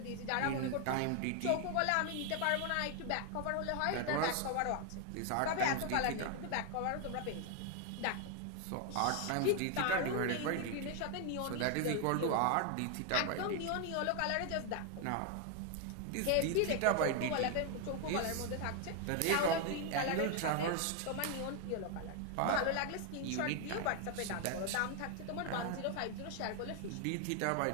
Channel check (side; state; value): both; different; correlation 0.01